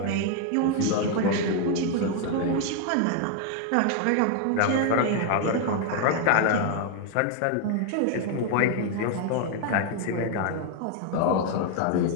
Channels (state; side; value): different; both; correlation 0.01